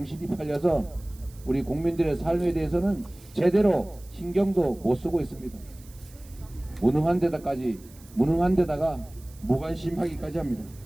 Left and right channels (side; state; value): right; noise; hiss, 24 dB below the sound